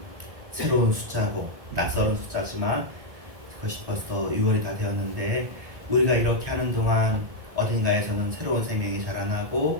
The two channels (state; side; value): late; left; 1.1 ms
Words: 새로운 숫자고 낯설은 숫자지만 그것이 벌써 6월이 다 되었는데, 우리가 이렇게 하는 동안 어딘가에서는 새로운 생명이